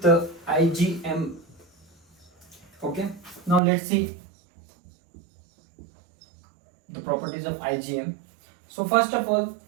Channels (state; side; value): drops out; left; at 3.6 s